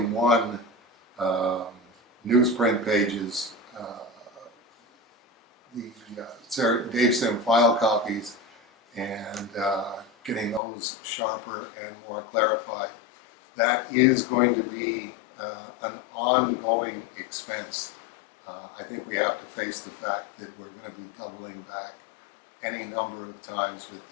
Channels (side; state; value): right; drops out; at 10.6 s